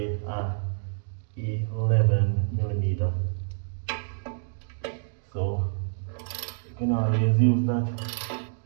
a 11 millimeter. So you can always use that.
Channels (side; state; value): left; silent; digital silence